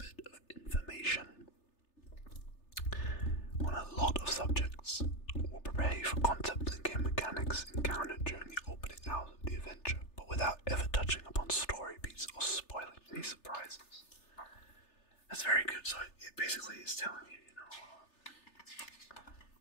of information on a lot of subjects will prepare you for concepts and game mechanics encountered during the opening hours of the adventure, but without ever touching upon story beats or spoiling any surprises. That's very good. So it basically is telling you,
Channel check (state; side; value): late; right; 3.3 ms